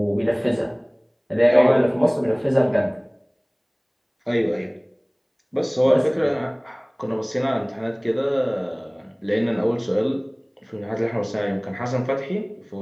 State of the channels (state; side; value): identical; both; correlation 1.00